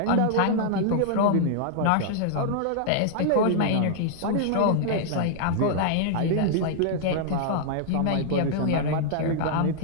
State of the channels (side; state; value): both; different; correlation -0.01